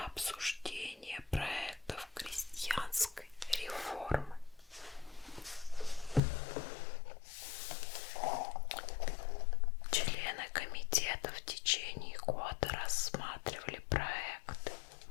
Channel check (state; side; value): drops out; right; at 6.2 s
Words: обсуждения проектов крестьянской реформы. Члены комитета в течение года рассматривали проекты.